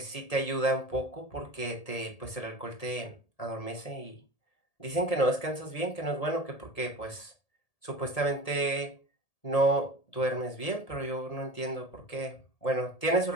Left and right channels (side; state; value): right; late; 1.8 ms